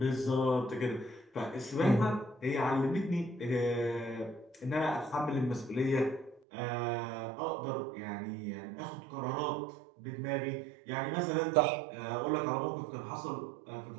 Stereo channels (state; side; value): drops out; left; at 6.4 s